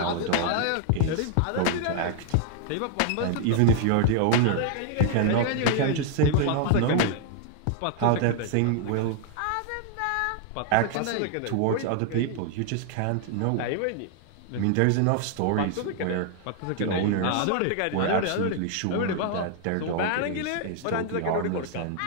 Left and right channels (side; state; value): both; different; correlation 0.00